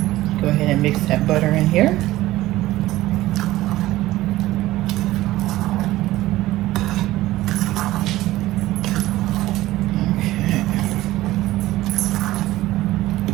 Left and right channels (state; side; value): quieter; left; 16.4 dB